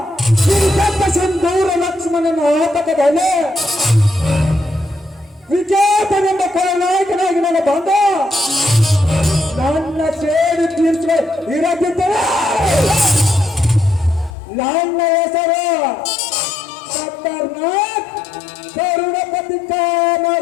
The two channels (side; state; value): right; drops out; at 14.3 s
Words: ಈ ದೊಡ್ಡ ಸಿಂಧೂರ ಲಕ್ಷ್ಮಣನ ಆತಕದಲ್ಲಿ ವಿಜೇತನೆಂಬ ಕೊಳನಾಯಕನಾಗಿ ನನ್ನ ಬಂದ ನನ್ನ ಸೇಡಿ ತೀರಿಸುವ ಇರದಿದ್ದರೆ ನನ್ನ ಹೆಸರು ಖತರ್ನಾಕ್ ಕರುಣಪತಿ